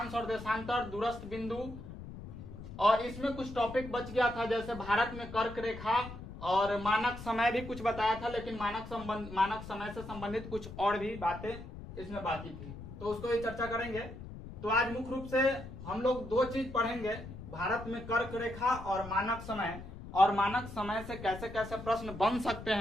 और देशांतर, दूरस्थ बिंदु, और इसमें कुछ टॉपिक बच गया था जैसे भारत में कर्क रेखा और मानक समय भी कुछ बताया था, लेकिन मानक समय से संबंधित कुछ और भी बातें इसमें बाकी थी, तो उसको भी चर्चा करेंगे। तो आज मुख्य रूप से हम लोग दो चीज पढ़ेंगे, भारत में कर्क रेखा और मानक समय से कैसे कैसे प्रश्न बन सकते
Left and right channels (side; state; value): left; noise; rumble, 12 dB below the sound